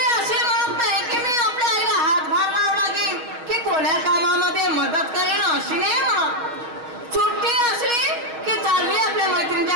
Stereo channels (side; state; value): left; late; 6.3 ms